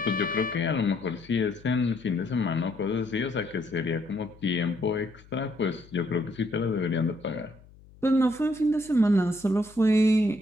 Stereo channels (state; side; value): noise; left; hum, 24 dB below the sound